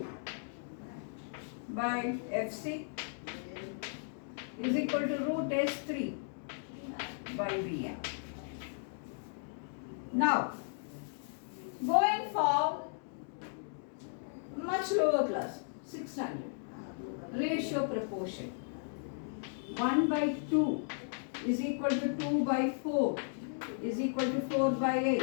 by FC is equal to root S3 by BM. Now, going for much lower class, 6 standard, ratio proportion. 1 by 2 is equal to 2 by 4 is equal to 4 by 8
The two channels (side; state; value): right; silent; digital silence